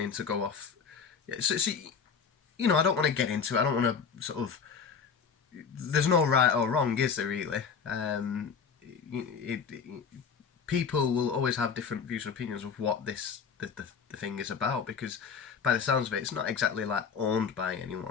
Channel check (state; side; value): quieter; right; 6.2 dB